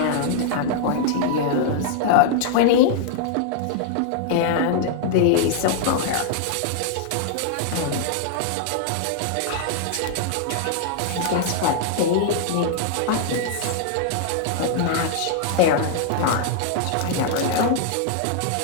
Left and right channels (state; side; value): different; both; correlation -0.01